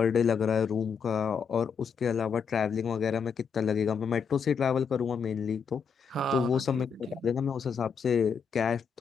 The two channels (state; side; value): quieter; right; 6.3 dB